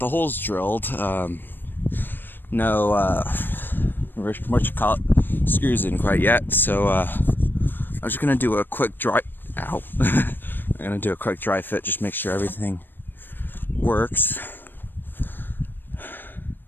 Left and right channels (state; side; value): late; right; 0.094 ms